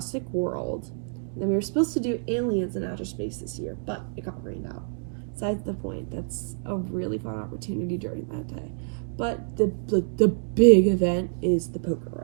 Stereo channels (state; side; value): silent; left; digital silence